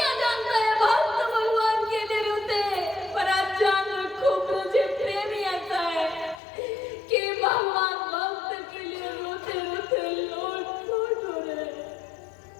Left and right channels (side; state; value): right; drops out; at 6.4 s